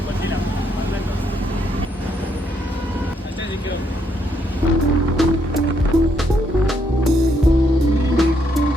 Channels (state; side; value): normal; both; correlation 0.74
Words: ಗೊತ್ತಿಲ್ಲ. ಅಷ್ಟೇ ಸಿಕ್ಕಿರೋದು.